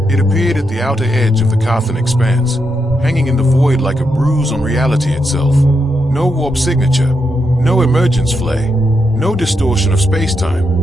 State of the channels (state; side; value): normal; both; correlation 0.82